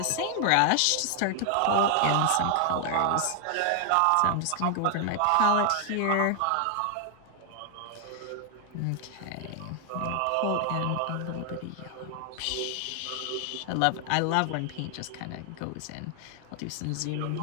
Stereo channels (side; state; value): both; different; correlation 0.00